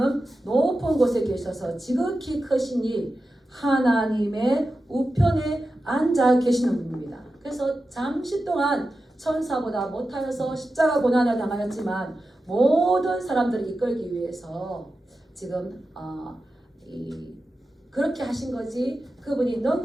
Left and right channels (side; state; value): both; normal; correlation 0.92